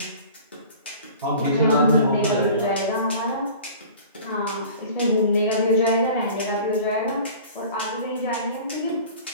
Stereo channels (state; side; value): inverted; both; correlation -0.43